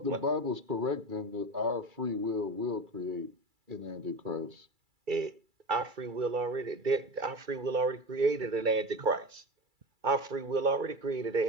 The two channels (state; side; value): late; left; 2.3 ms